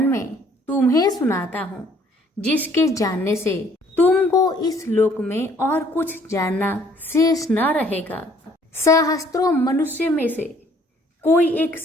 में तुम्हें सुनाता हूँ, जिसके जानने से तुमको इस लोक में और कुछ जानना शेष न रहेगा। सहस्त्रों मनुष्य में से कोई एक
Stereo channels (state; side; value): normal; both; correlation 0.60